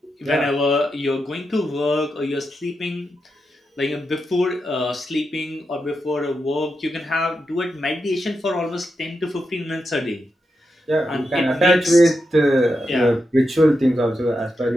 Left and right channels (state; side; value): normal; both; correlation 0.87